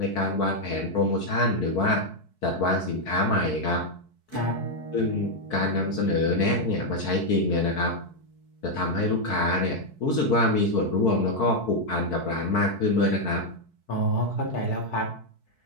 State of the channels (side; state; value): right; late; 4.6 ms